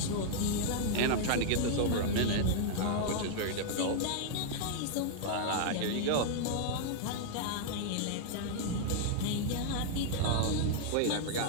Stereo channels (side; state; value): both; different; correlation -0.01